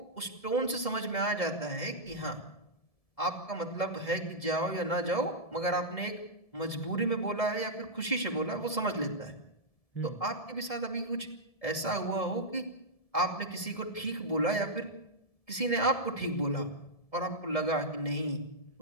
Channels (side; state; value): right; late; 1.7 ms